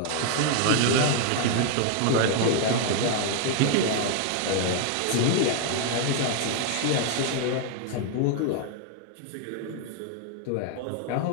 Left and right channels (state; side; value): different; both; correlation 0.00